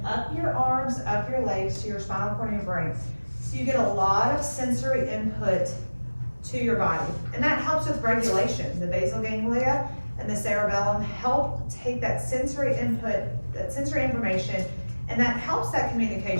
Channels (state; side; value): inverted; both; correlation -1.00